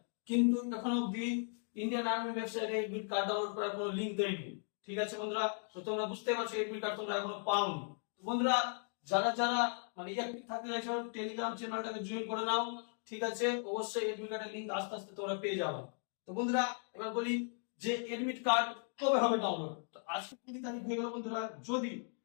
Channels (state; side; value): silent; right; 53 dB below the other